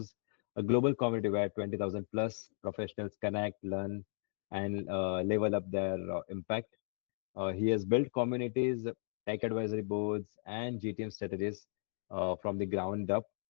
a global community where 20,000 plus professionals connect, learn, and level up their impact. He has built communities, tech advisory boards, and GTM strategies from the ground up,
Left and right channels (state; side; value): silent; right; digital silence